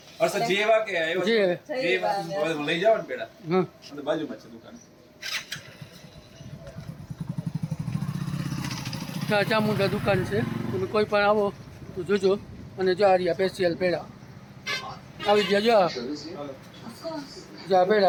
અરસદ જેવા કે આવ્યો છે? જેવા. જેવા. લઈ જાવ ને પેડા. હા અને બાજુમાં છે દુકાન. ચામુંડા દુકાન છે. તમે કોઈ પણ આવો તો જોજો. અને જો આ રહ્યા સ્પેશિયલ પેડા આવી ગયા. જો જો આ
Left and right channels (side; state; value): both; identical; correlation 1.00